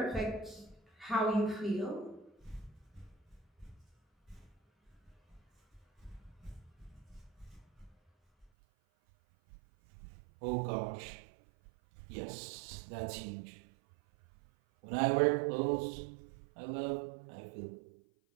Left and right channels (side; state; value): left; drops out; at 8.5 s